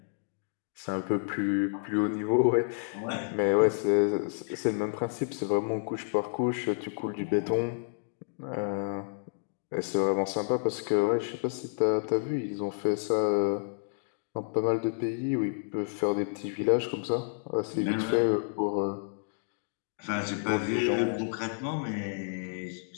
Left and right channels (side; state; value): right; silent; digital silence